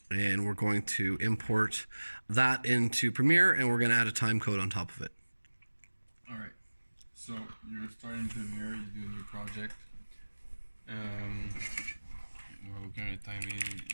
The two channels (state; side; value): inverted; both; correlation -1.00